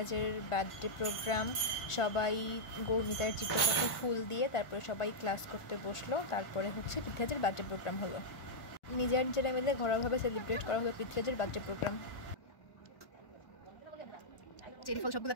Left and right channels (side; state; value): right; late; 1.4 ms